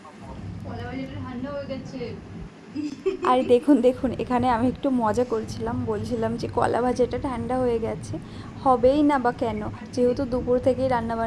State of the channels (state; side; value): identical; both; correlation 1.00